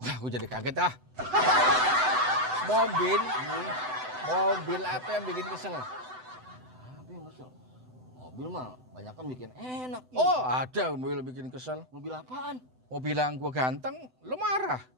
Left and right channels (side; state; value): left; late; 7.9 ms